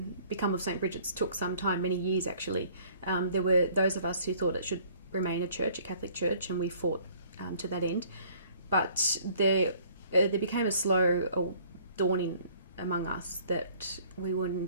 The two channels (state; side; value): inverted; both; correlation -0.56